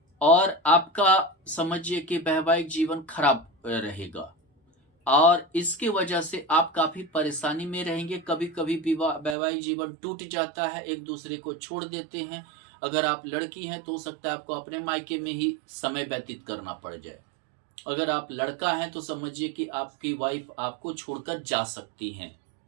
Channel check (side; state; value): left; drops out; at 9.3 s